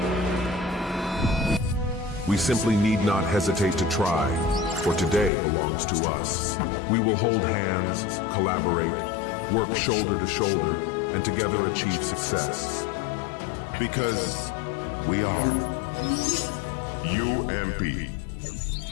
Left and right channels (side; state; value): right; drops out; at 5.3 s